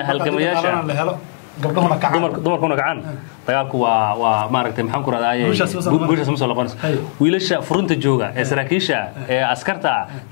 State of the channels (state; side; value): silent; right; digital silence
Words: halgamayaasha dumarkuna gacan dagaalku waa maaragtay maxaan ku raadaayay guushaas ma soo laqonayso wiilasha furunta jooga ee saraakiisha ee askarta